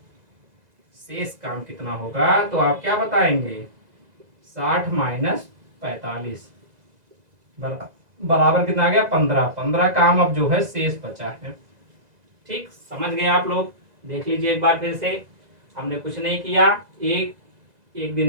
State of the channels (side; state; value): left; late; 2.0 ms